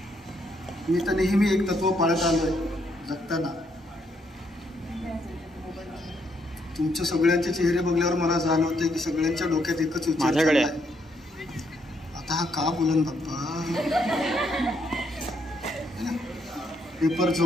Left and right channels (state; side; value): normal; both; correlation 0.74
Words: मी तर नेहमी एक तत्व पाळत आलोय जगताना. तुमच्या सगळ्यांचे चेहरे बघल्यावर मला जाणवते की सगळ्यांच्या डोक्यात एकच विचार आहे, आता हा का बोलन बाप्पा. पेपर